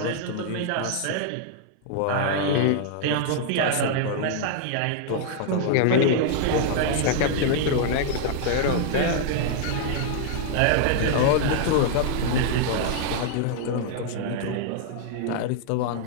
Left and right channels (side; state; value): both; different; correlation -0.01